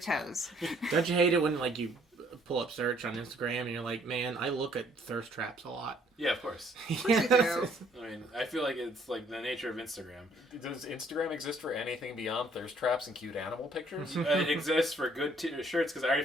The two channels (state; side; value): normal; both; correlation 0.63